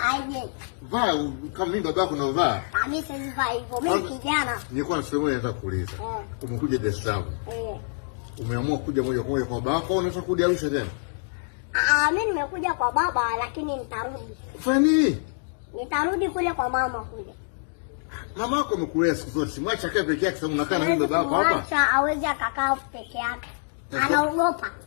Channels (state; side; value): silent; right; digital silence